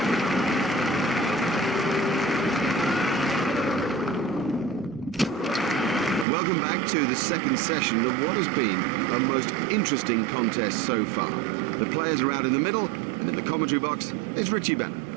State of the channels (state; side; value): drops out; left; at 6.2 s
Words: Welcome back to the second session of what has been a most interesting contest so far. The players are out in the middle, and in the commentary box, it's Richie Bennett.